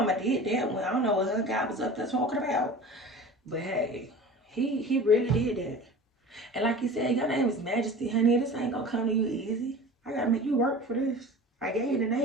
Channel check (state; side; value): normal; both; correlation 0.37